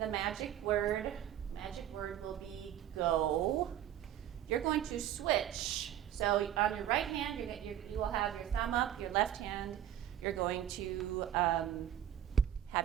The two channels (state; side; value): quieter; left; 11.0 dB